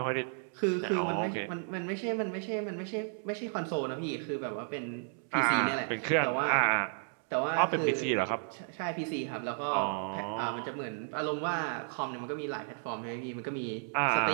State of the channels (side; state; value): left; silent; 56 dB below the other